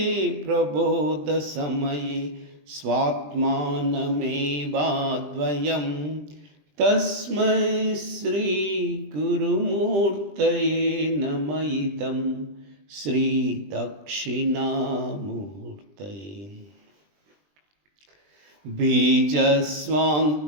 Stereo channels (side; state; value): left; late; 20 ms